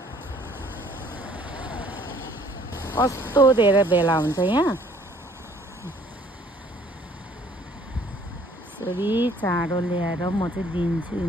कस्तो धेरै भेला हुन्छ यहाँ। यसरी चारो ल्याएर म चाहिँ दिन्छु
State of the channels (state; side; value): normal; both; correlation 0.58